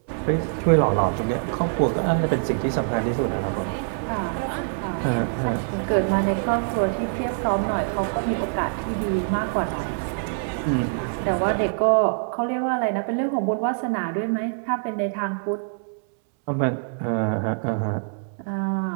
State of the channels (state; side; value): silent; left; 62 dB below the other